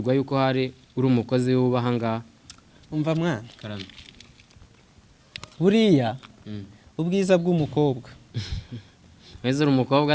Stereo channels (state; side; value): identical; both; correlation 1.00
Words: yuko hari uri umukozi w'ubahangaha. Umva mwana. Karame. Buriya ubwiza bw'umukobwa. Weze uri